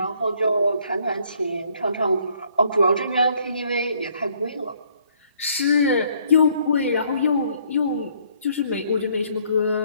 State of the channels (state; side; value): inverted; both; correlation -0.65